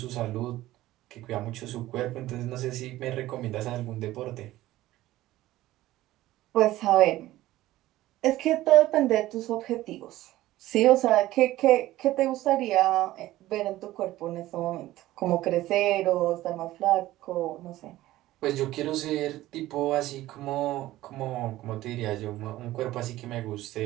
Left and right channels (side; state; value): left; quieter; 15.9 dB